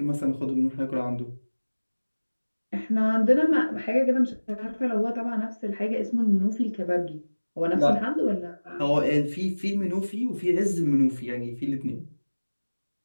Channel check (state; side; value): inverted; both; correlation -1.00